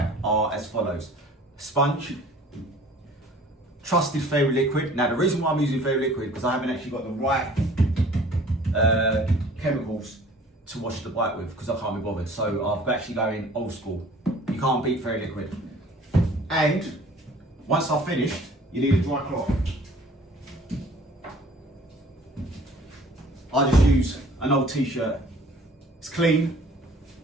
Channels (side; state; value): both; normal; correlation 0.51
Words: are as follows. Sponge, trusted Fairy Liquid. Now the reason why I'm using Fairy Liquid because I haven't actually got the right chemicals to wash the bike with because I can't be bothered. So I've actually going old school. You can't beat Fairy Liquid. And once I've finished, you need a dry cloth. I just use an old t-shirt. It's clean,